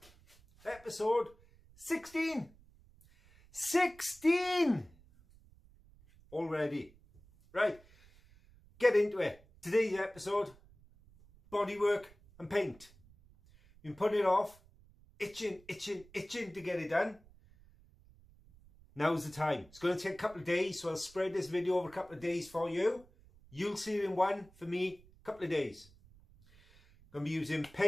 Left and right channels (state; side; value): noise; right; rumble, 26 dB below the sound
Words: Episode 16. 16 already. Right, get into it. Today's episode, bodywork and paint. Been putting it off, itching to get it done. Now's the time. It's going to take a couple of days, so I'll spread this video over a couple of days for you. You'll see it in one, for me, a couple of days. Going to be using